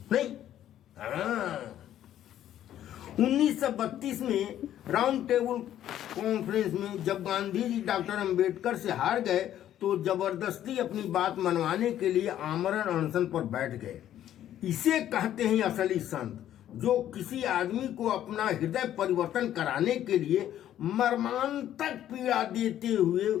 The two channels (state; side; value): quieter; right; 11.6 dB